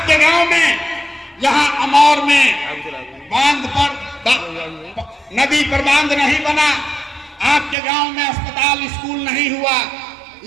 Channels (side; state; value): left; drops out; at 7.8 s